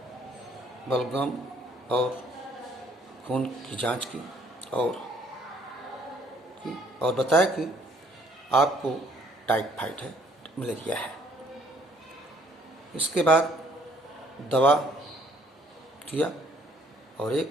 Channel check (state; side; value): normal; both; correlation 0.62